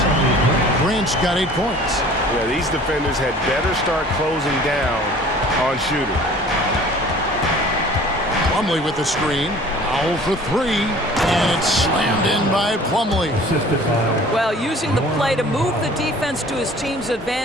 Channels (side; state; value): both; normal; correlation 0.48